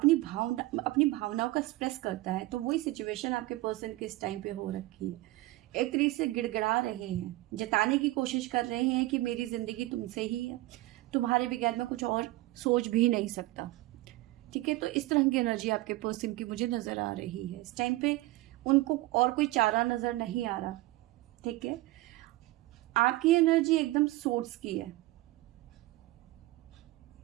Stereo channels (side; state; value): left; quieter; 18.8 dB